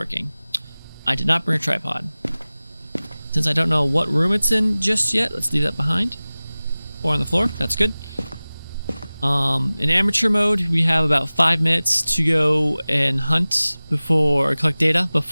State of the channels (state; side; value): inverted; both; correlation -0.98